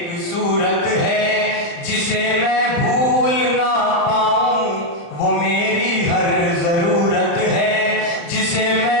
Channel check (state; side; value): late; right; 35 ms